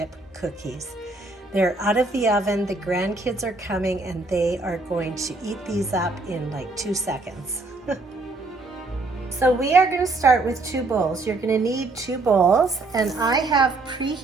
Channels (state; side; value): quieter; left; 3.3 dB